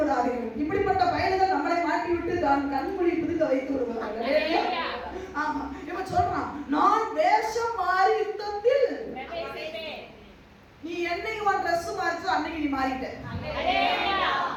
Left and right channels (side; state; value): both; identical; correlation 1.00